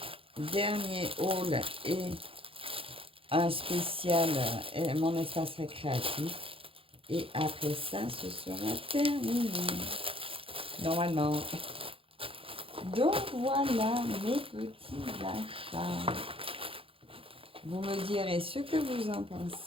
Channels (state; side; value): late; left; 0.27 ms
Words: dernier haul et un spécial, mon espace récréatif. Et après ça, ce sera terminé. Normalement. Donc voilà mes petits achats. Vous me direz ce que vous en